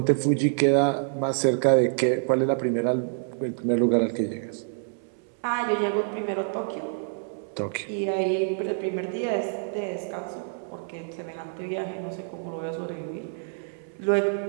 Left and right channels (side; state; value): left; silent; 60 dB below the other